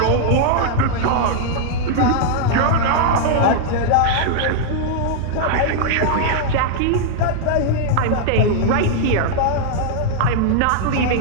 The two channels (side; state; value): both; different; correlation -0.01